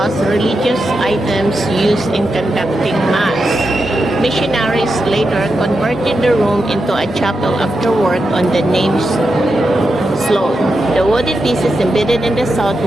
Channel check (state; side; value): normal; both; correlation 0.87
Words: religious items used in conducting Mass. Missionaries later converted the room into a chapel after work on the name's slope. The wooden pieces embedded in the south